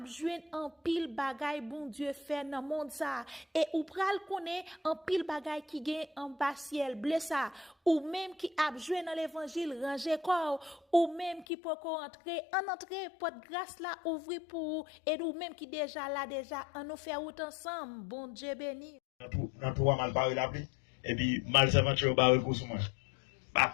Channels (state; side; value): drops out; right; at 11.5 s